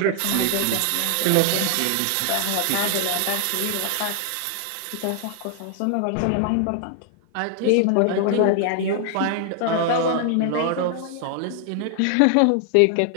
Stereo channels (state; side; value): different; both; correlation 0.00